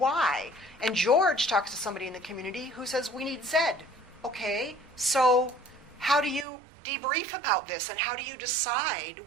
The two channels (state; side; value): drops out; left; at 6.5 s